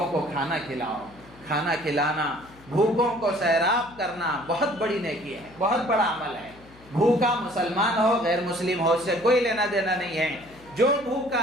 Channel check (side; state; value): left; noise; hum, 24 dB below the sound